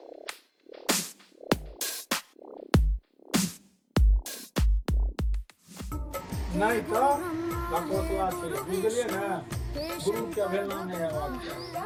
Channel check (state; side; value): identical; both; correlation 1.00